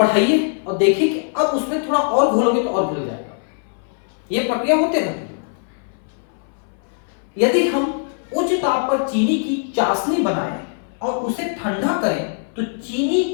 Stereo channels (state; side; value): silent; right; 62 dB below the other